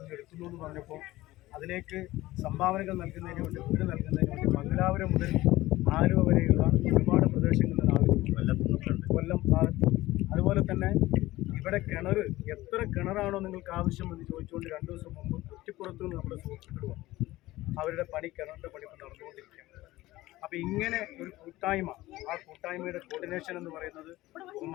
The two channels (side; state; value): right; quieter; 17.6 dB